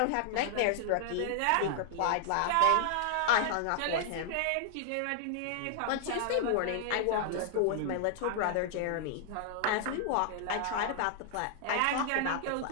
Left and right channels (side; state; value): both; different; correlation 0.00